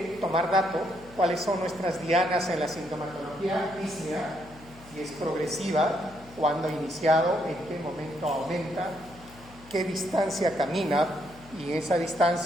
tomar dato cuáles son nuestras dianas en la sintomatología dísnea, si es progresiva, cuándo ha iniciado, en qué momento aumenta, qué distancia camina, y en esa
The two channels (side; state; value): left; noise; hum, 21 dB below the sound